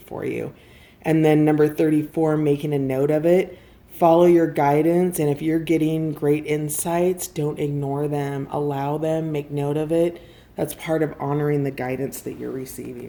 for you. And then number 34, making a note of it. Follow your guidance, and if you're getting great insights, don't ignore them. Allow them, make note of it. That's part of honoring the guidance that you're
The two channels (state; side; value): identical; both; correlation 1.00